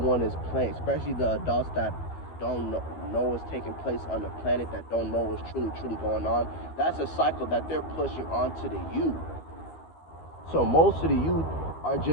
is playing, especially the adults that don't know what's taking place on the planet, that don't know what's truly going on. That's a cycle that they're pushing onto the youth. So most of the youth are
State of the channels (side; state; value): right; late; 12 ms